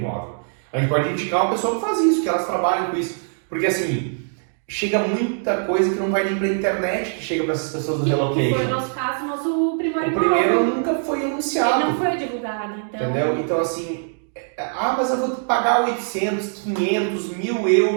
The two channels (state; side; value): silent; left; digital silence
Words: A gente pode indicar uma pessoa que faz isso, que elas trabalham com isso, porque assim, chega muita coisa que não vai nem pra internet, que chega para essas pessoas do relocation. Foi o nosso caso, nosso primeiro imóvel. O primeiro nunca foi anunciado. Ele não foi divulgado, então... Entendeu? Então assim, mas eu vou pagar 800, 500, 1.000